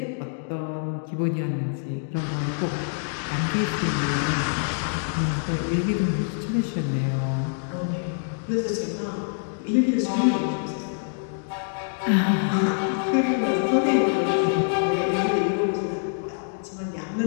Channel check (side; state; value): right; silent; digital silence